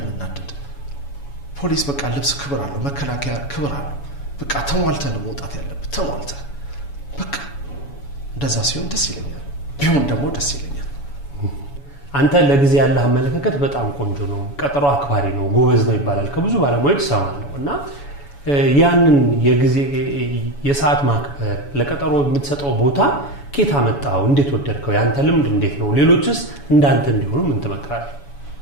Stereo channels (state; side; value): late; right; 7.1 ms